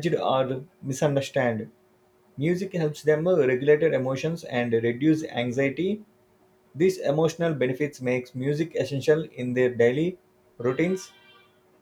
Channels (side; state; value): both; identical; correlation 1.00